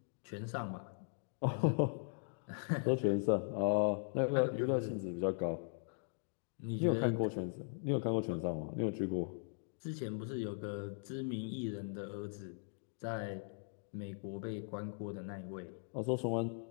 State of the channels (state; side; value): silent; right; digital silence